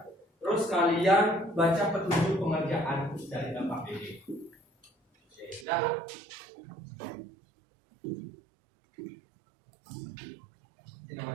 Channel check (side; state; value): left; drops out; at 5.7 s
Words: Terus kalian baca petunjuk pengerjaan dari LKPD. sudah. Ini